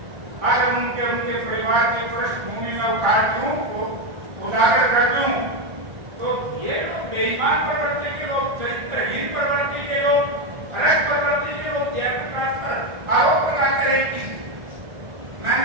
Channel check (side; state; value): left; late; 1.6 ms